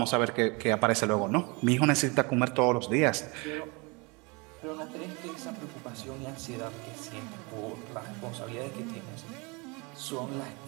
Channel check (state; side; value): quieter; left; 28.8 dB